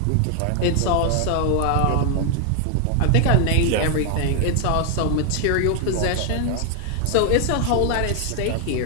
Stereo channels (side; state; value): both; different; correlation 0.00